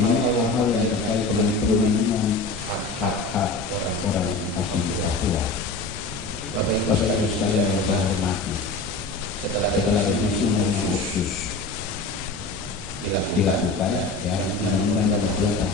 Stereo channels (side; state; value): right; quieter; 3.3 dB